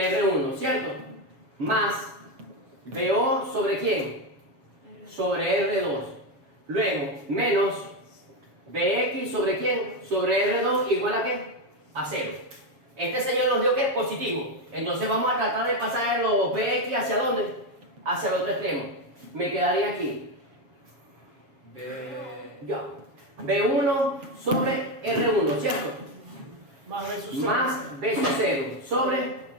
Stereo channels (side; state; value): left; late; 7.3 ms